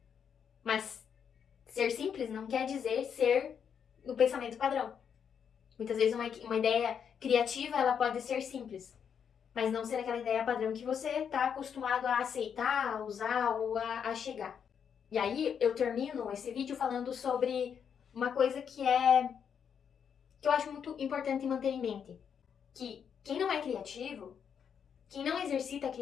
Mas ser simples não quer dizer ser no pensamento padrão. Muitas vezes uma ideia criativa ela pode ser simples, mas não ser aquela ideia padrão que você está acostumado a aceitar, a usar ou a chegar. E aí eu termino esse vídeo falando sobre uma coisa que eu acho muito importante manter em mente. Que quem não é criativo, Quem não exercita a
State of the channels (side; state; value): right; quieter; 7.6 dB